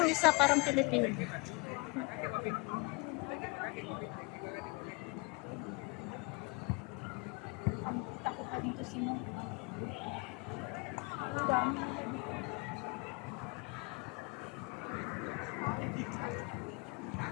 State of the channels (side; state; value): right; quieter; 28.4 dB